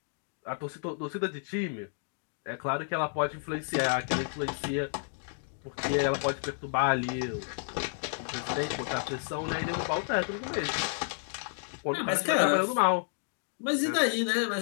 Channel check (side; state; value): right; silent; digital silence